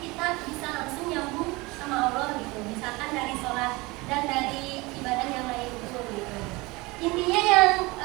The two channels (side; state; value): left; quieter; 23.5 dB